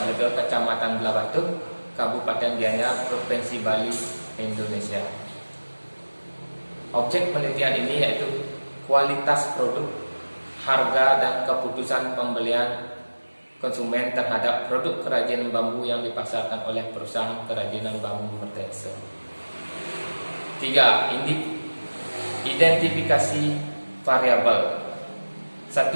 Blega, Kecamatan Belabatu, Kabupaten Gianyar, Provinsi Bali, Indonesia. Objek penelitian ini yaitu kualitas produk, harga, dan keputusan pembelian konsumen terhadap produk kerajinan bambu yang dipasarkan oleh perusahaan kerajinan bambu Mertese. 3. Identifikasi variabel. 1.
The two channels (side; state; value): both; inverted; correlation -1.00